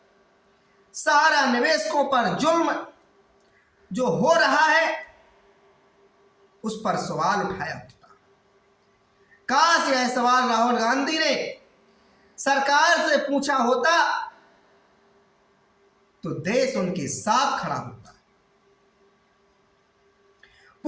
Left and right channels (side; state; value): both; identical; correlation 1.00